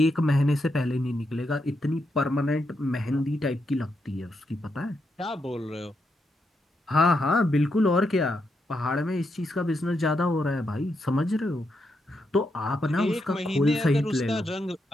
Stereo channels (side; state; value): both; normal; correlation 0.82